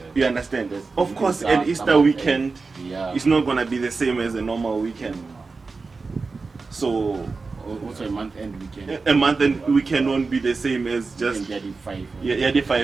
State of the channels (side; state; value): left; quieter; 4.2 dB